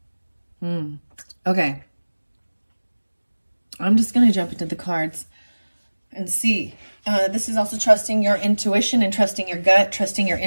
Okay. I'm just going to jump into the cards and see. This is also trusting your intuition and trusting your gut, trusting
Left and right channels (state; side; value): inverted; both; correlation -1.00